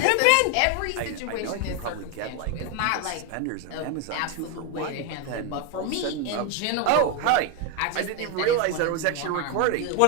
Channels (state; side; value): different; both; correlation 0.01